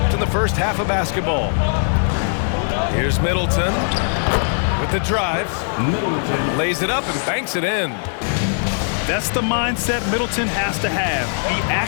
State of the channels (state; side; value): silent; right; 58 dB below the other